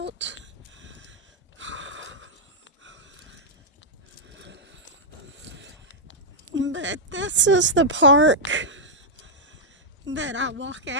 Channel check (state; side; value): normal; both; correlation -0.07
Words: But this is the park that I walk